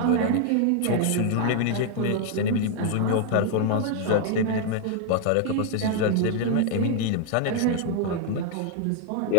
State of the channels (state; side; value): different; both; correlation 0.00